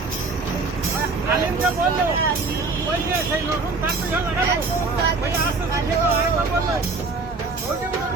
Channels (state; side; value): quieter; left; 3.9 dB